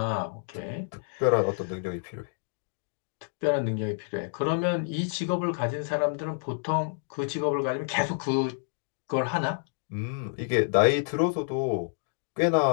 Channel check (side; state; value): right; silent; digital silence